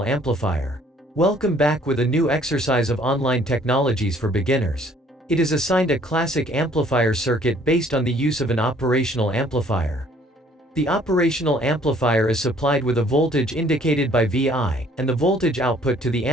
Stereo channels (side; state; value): both; normal; correlation 0.59